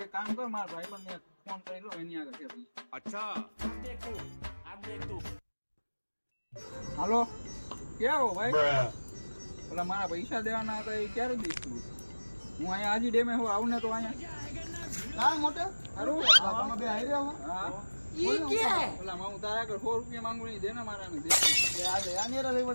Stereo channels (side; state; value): both; inverted; correlation -1.00